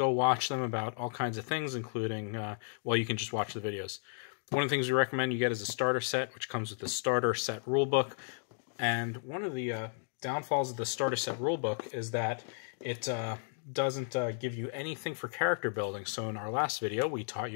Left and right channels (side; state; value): right; silent; digital silence